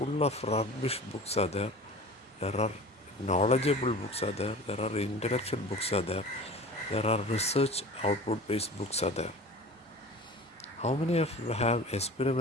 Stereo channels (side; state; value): both; normal; correlation 0.39